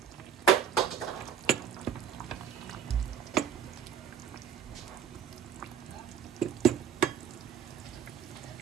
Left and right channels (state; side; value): quieter; left; 8.2 dB